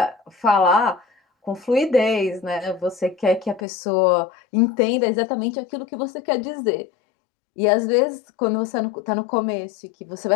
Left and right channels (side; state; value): right; drops out; at 3.7 s